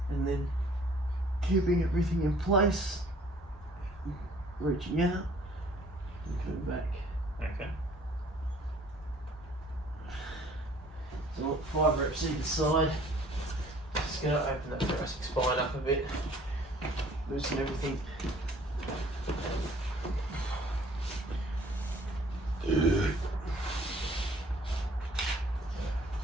And then keeping everything in place. Reaching out and coming back. Okay. So 5 reps either side. Just going to open that thoracic spine up a bit. Loosen everything.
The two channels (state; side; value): normal; both; correlation 0.55